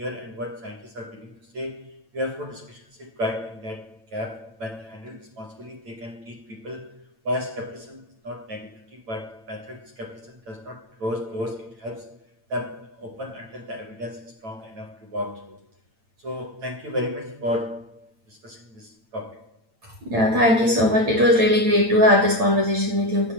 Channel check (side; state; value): left; late; 8.9 ms